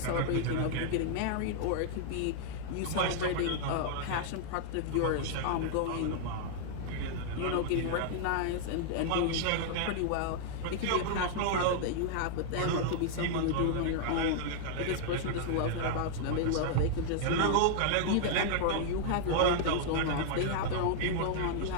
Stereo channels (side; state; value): both; different; correlation -0.01